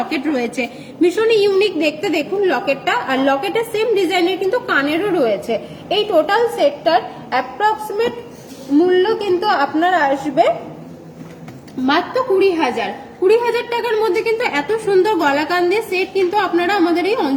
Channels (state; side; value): identical; both; correlation 1.00